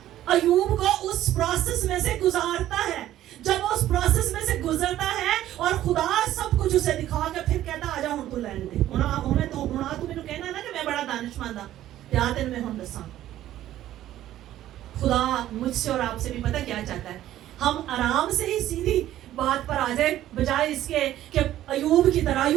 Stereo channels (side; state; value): left; quieter; 13.2 dB